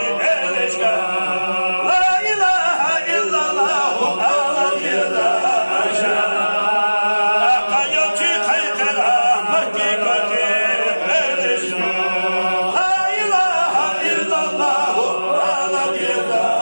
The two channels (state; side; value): inverted; both; correlation -1.00